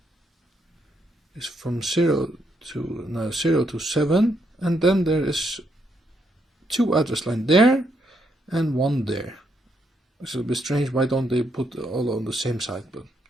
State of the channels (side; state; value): both; normal; correlation 0.77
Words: is from 0 to 7, and then there is 2 address lines there and 1 there. It's a bit strange. Why don't they put all on the same side? But